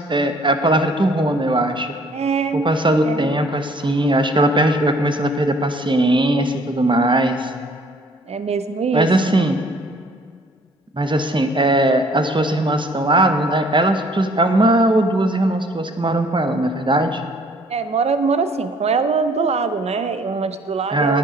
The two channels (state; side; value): normal; both; correlation 0.58